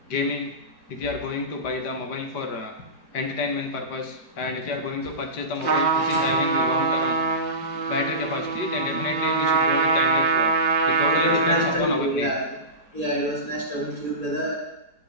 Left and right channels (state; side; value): late; right; 5.0 ms